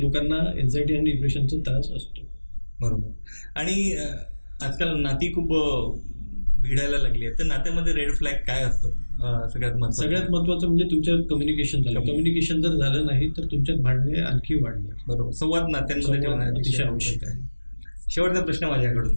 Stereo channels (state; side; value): inverted; both; correlation -1.00